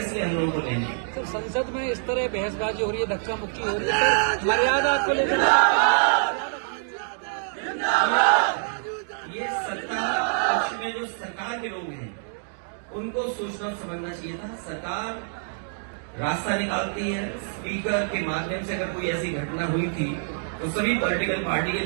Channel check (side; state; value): left; silent; digital silence